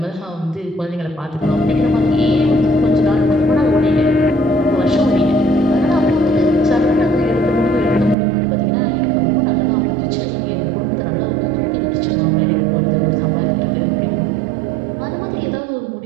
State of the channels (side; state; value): left; drops out; at 8.2 s